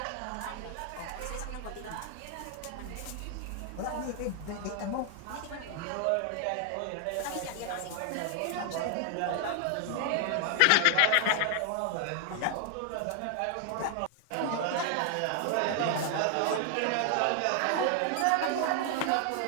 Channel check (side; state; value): both; different; correlation 0.00